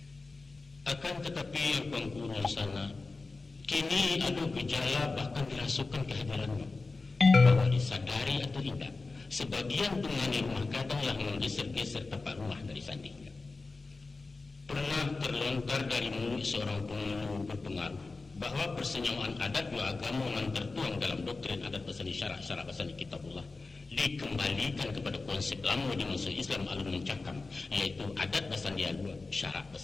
Akan tetapi yang kuang kurun sana, kini ada gejala bahkan dirasukan kehadirannya. Bahwa disadari atau indak, sebagian tungane rumah gadanglah menggeser-geser tapak rumah dari sandinya. Pernah terlontar dari mulut seorang pengulu berpengaruh bahwa persenyawaan adat juga agama yang tertuang dalam doktrin adat basani syarak basani kitabullah dikembalikan kepada konsep lama di masa Islam alun mencakam, yaitu adat basani alua syarak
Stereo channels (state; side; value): quieter; right; 3.7 dB